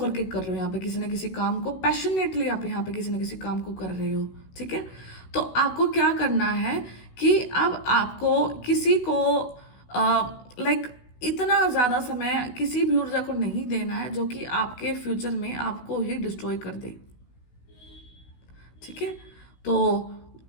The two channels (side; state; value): right; late; 16 ms